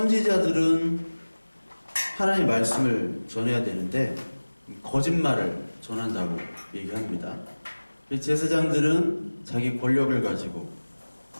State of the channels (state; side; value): inverted; both; correlation -1.00